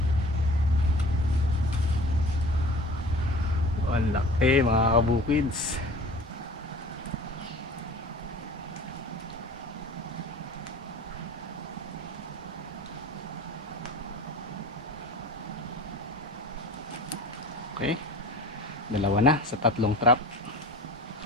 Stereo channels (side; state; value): both; normal; correlation 0.42